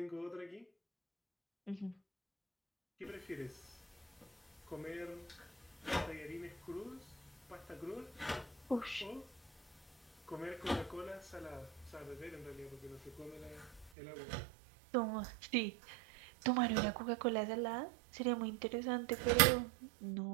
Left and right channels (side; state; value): left; drops out; at 13.9 s